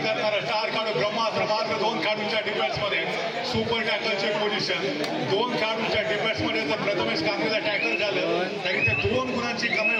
स्टार खेळाडू ब्रह्मास्त्र मात्र 2 खेळाडूंच्या डिफेन्समध्ये सुपर टॅकलची पोझिशन. 2 खेळाडूंच्या डिफेन्समध्ये जर प्रथमेश कामगिरीला टॅकल झालं तरी ते 2 गुणांची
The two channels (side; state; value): both; identical; correlation 1.00